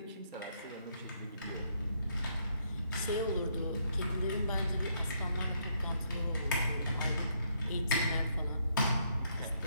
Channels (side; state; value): both; inverted; correlation -0.72